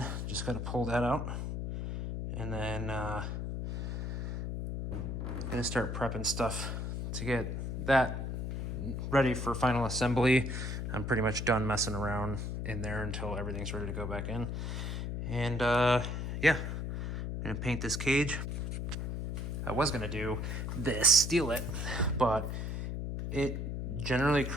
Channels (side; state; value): left; noise; hum, 3 dB below the sound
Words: Just got to pull that out, and then gonna start prepping stuff to get that ready for final assembly. I'm pretty much done messing around in there until everything's ready to go back in. And yeah, I'm gonna paint this cage. I was gonna do this, steal it, but it generally